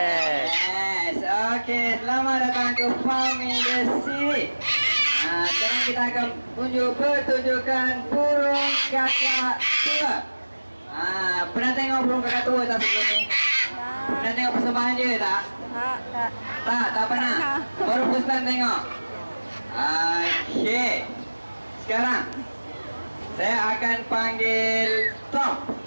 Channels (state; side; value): inverted; both; correlation -1.00